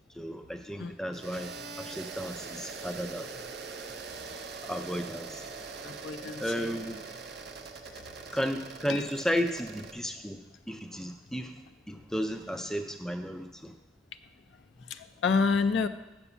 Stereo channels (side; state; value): both; normal; correlation 0.74